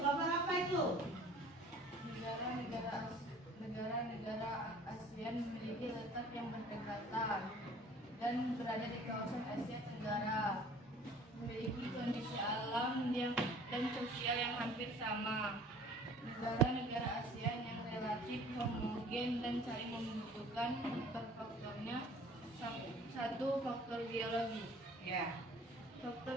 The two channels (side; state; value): both; normal; correlation 0.50